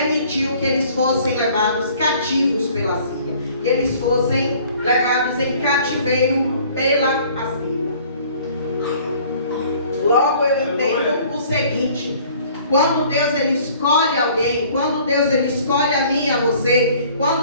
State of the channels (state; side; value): inverted; both; correlation -0.54